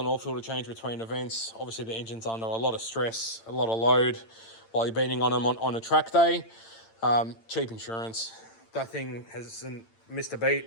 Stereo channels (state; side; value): late; right; 8.9 ms